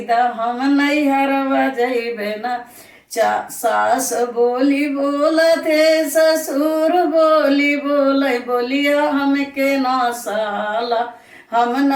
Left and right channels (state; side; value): identical; both; correlation 1.00